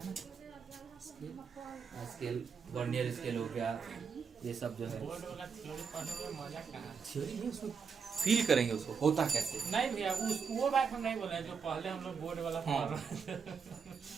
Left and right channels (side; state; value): left; quieter; 6.0 dB